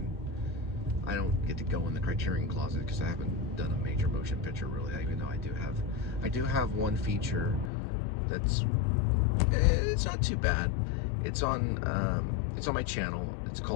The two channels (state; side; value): drops out; right; at 7.7 s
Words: I don't get to go in the Criterion Closet because I haven't done a major motion picture really. Even though I do have one feature that's it's not too bad. It's on my channel. It's